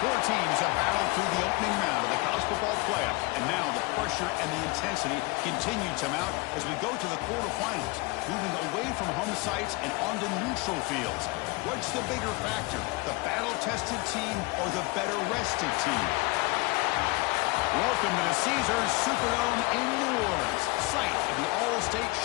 Four teams have battled through the opening round of the college football playoff, and now the pressure and the intensity continue to mount as we go to the quarterfinals, moving away from home sites and onto neutral fields. What's the bigger factor, the battle-tested team or the better-rested team? Welcome to the Caesars Superdome in New Orleans, site of the All-State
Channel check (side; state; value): right; quieter; 24.9 dB